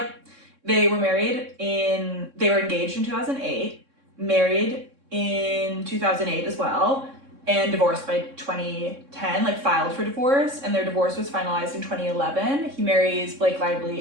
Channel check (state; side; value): late; left; 3.6 ms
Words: They were engaged in 2008, married in 2008 as well, and divorced by 2010, like filed for divorce, and their divorce was finalized in 2011. He marries Blake